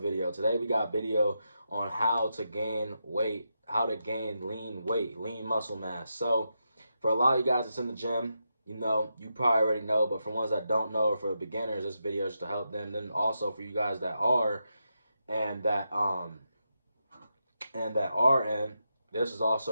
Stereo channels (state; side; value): inverted; both; correlation -0.86